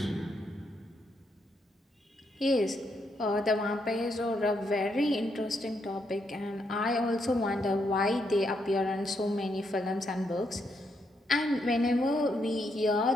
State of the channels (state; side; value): normal; both; correlation 0.78